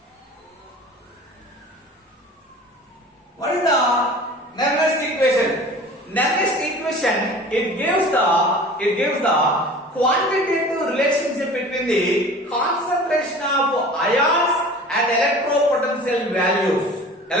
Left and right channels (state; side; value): normal; both; correlation 0.42